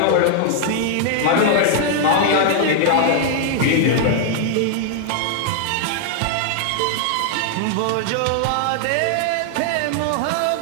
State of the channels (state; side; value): different; both; correlation 0.00